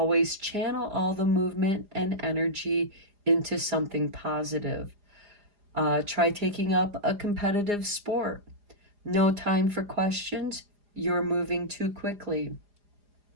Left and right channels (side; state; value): left; late; 4.9 ms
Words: channel all the movement and energy into something positive. Try taking up a competitive sport. No time for questions. You're moving too quickly.